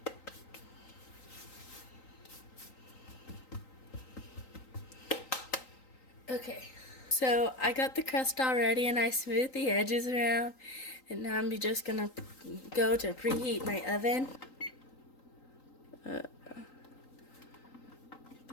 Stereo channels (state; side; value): late; right; 3.8 ms